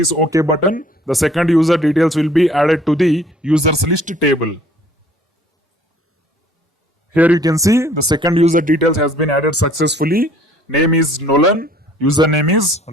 OK button, the second user details will be added to the users list table. Here you can see the second user details has been added successfully. Name is Nolan, username is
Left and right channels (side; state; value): both; normal; correlation 0.56